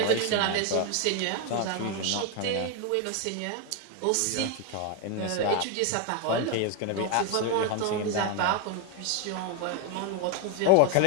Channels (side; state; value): both; different; correlation 0.01